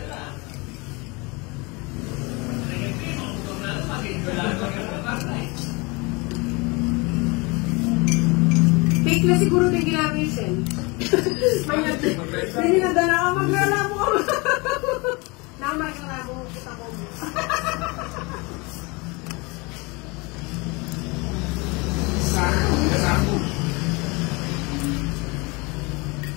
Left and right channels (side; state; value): right; quieter; 27.1 dB